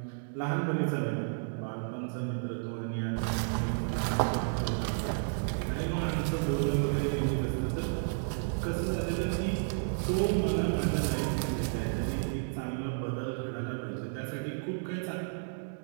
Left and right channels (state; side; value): silent; left; digital silence